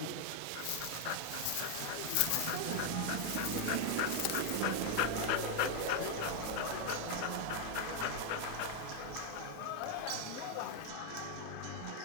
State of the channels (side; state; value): both; different; correlation 0.00